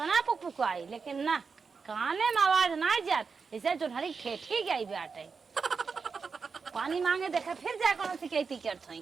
पुक आई लेकिन ना काने में आवाज ना जात जैसे जो हरी ठेठी गई बाटे पानी मांगे देखा फिर जा कौन शिकायती करत है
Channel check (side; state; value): left; quieter; 5.2 dB